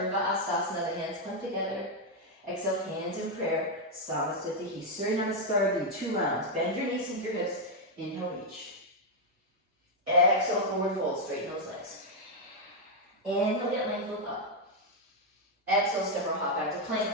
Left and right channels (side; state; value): both; normal; correlation 0.00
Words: Hastasana, the hands come together. Exhale, hands in prayer, Samasthiti, Surya Namaskara, do 2 rounds. Bend your knees, sink your hips. Inhale, reach. Exhale, forward fold, straighten those legs. Inhale, get length, look up. Exhale, step or hop back to